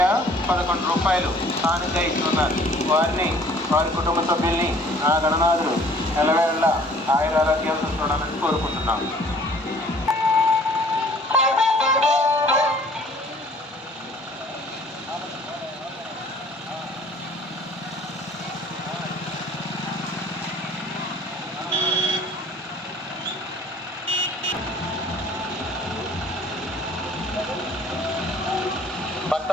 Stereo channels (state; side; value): normal; both; correlation 0.54